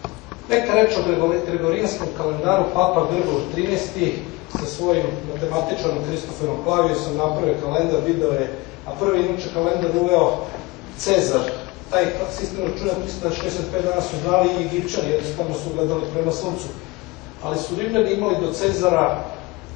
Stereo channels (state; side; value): quieter; right; 23.2 dB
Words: Neka reč o gregorijanskom kalendaru, Papa Grigor XIII sa svojim matematičarom Kristoferom Klavijusom napravio kalendar, video je, a prvi inače kalendar uveo Cezar. Taj sistem računa 365 dana su znali i Egipćani, jednostavno su gledali prema suncu. Ali su Rimljani imali do Cezara